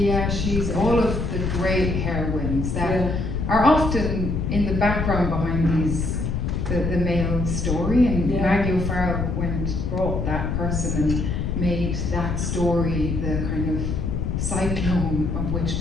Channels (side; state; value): left; noise; rumble, 1 dB below the sound